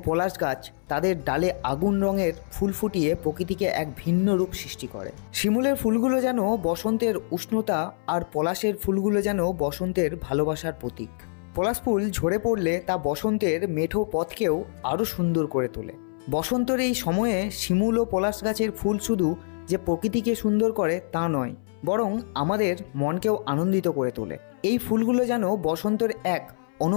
পলাশ গাছ তাদের ডালে আগুন রঙের ফুল ফুটিয়ে প্রকৃতিকে এক ভিন্ন রূপ সৃষ্টি করে। শিমুলের ফুলগুলো যেন বসন্তের উষ্ণতা আর পলাশের ফুলগুলো যেন বসন্তের ভালোবাসার প্রতীক। পলাশ ফুল ঝরে পড়লে তা বসন্তের মেঠো পথকেও আরও সুন্দর করে তোলে। বসন্তের এই সময়ে শিমুল ও পলাশ গাছের ফুল শুধু যে প্রকৃতিকে সুন্দর করে তা নয়, বরং আমাদের মনকেও আনন্দিত করে তোলে। এই ফুলগুলো যেন বসন্তের এক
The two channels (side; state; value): right; silent; 61 dB below the other